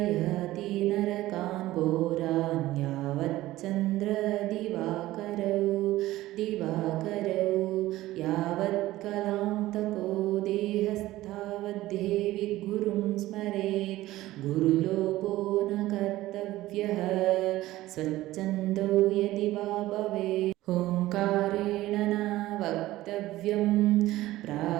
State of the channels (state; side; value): quieter; left; 16.4 dB